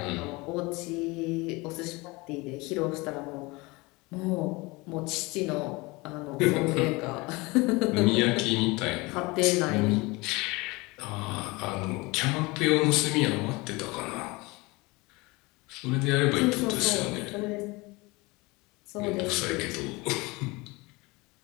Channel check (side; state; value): right; quieter; 24.2 dB